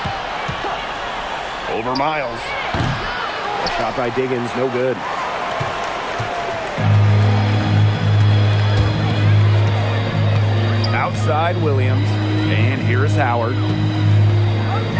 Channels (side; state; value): both; identical; correlation 1.00